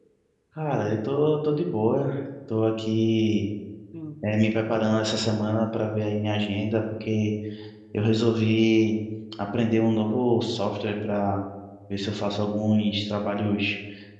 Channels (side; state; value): both; identical; correlation 1.00